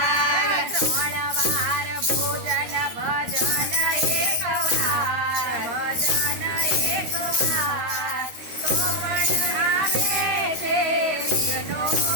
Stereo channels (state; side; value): late; left; 13 ms